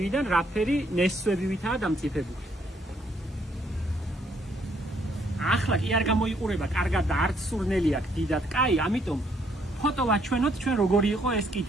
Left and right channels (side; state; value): both; normal; correlation 0.69